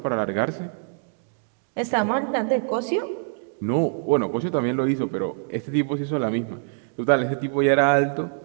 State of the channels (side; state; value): left; silent; digital silence